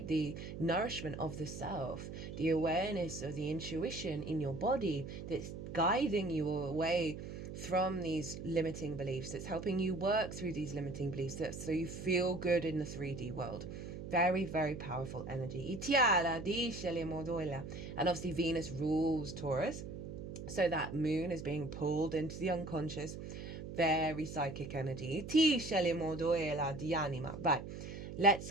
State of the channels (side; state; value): right; noise; hum, 9 dB below the sound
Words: The nourishment of the self, the awareness of the intuition in your body that's guiding you away from these limiting beliefs. It's helping you work through these limiting beliefs so you feel good in the 3D world. Very, very powerful energy. And obviously Venus rules Taurus. So that moon is being pulled into the unconscious. Very psychic energy. Right, let's